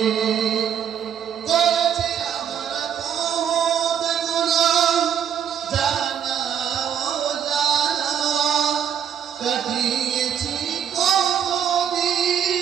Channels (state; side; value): quieter; left; 8.8 dB